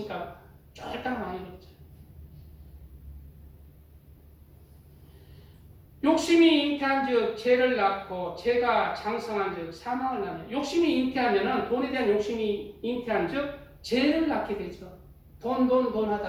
쫄딱 망해버렸죠. 욕심이 잉태한 즉 죄를 낳고 죄가 장성한 즉 사망을 낳는. 욕심이 잉태하면은 돈에 대한 욕심이 잉태한 즉 죄를 낳게 되죠. 돈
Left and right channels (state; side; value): identical; both; correlation 1.00